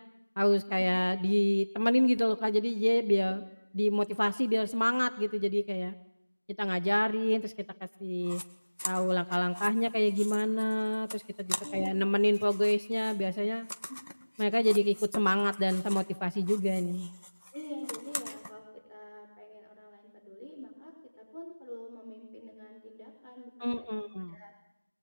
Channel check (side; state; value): both; inverted; correlation -1.00